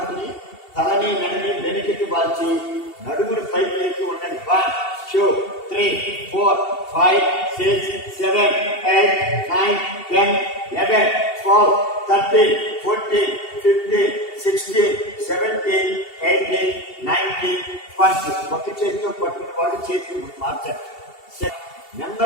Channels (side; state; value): right; late; 2.7 ms